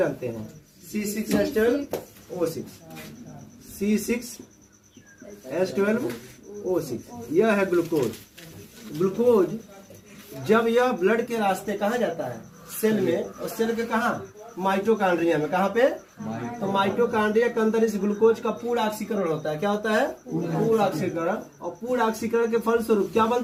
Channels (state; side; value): identical; both; correlation 1.00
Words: हैं? C6H12O6, C6H12O6, यह है ग्लूकोज। ग्लूकोज जब यह ब्लड के रास्ते कहाँ जाता है? सेल में, और सेल के कहाँ? माइटोकॉन्ड्रिया में। कहाँ पे? तो माइटोकॉन्ड्रिया के अंदर इस ग्लूकोज का पूर्ण ऑक्सीकरण होता है। क्या होता है? पूर्ण ऑक्सीकरण। और पूर्ण ऑक्सीकरण के फलस्वरूप क्या